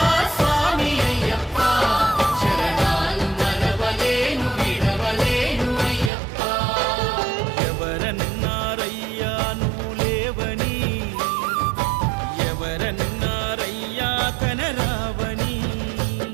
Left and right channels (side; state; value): left; drops out; at 6.1 s